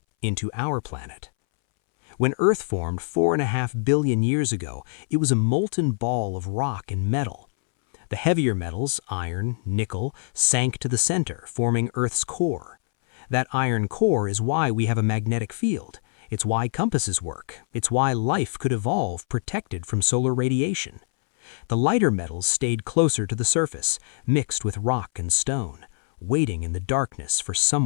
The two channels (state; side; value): silent; right; 62 dB below the other